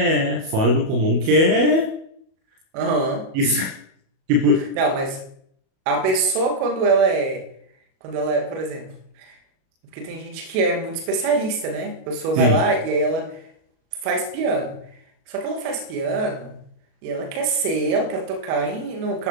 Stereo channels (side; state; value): left; late; 37 ms